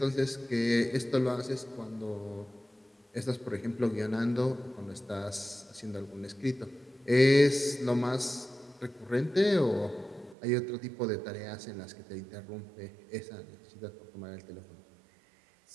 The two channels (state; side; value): drops out; left; at 10.4 s